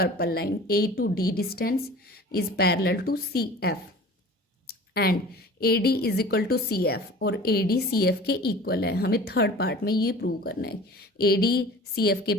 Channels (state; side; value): normal; both; correlation 0.42